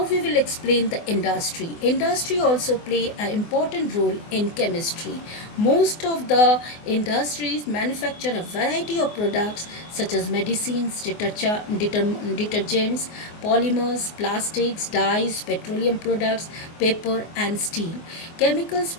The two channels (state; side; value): late; right; 24 ms